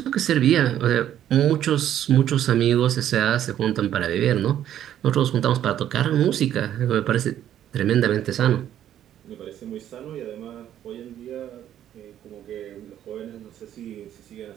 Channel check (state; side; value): quieter; left; 11.1 dB